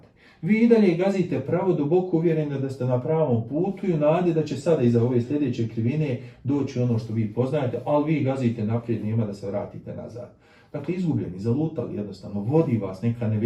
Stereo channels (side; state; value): both; identical; correlation 1.00